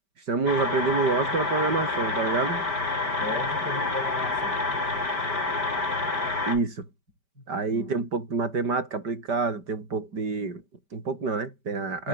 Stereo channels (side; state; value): left; late; 5.1 ms